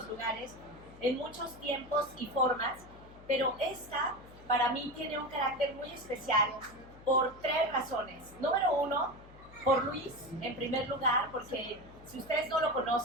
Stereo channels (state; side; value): noise; left; hum, 21 dB below the sound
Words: lugares, en muchos tiempos y formas, pero esta para mí tiene un carácter muy especial por tres razones. Número uno, por Luis, en primer lugar, porque si ustedes no lo